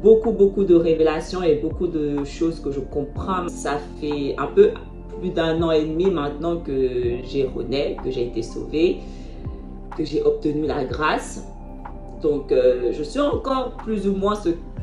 beaucoup de révélations et beaucoup de choses que je comprends. Ça fait un peu plus d'un an et demi maintenant que j'ai rené, que j'ai été sauvée, que j'ai obtenu la grâce. Donc, je suis encore plus ou moins ce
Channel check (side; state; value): both; identical; correlation 1.00